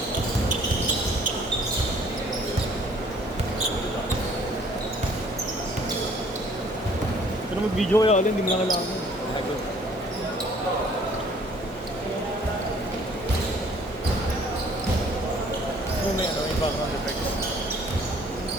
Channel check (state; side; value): normal; both; correlation 0.57